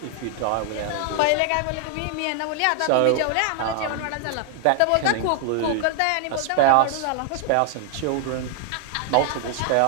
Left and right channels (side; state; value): both; different; correlation 0.00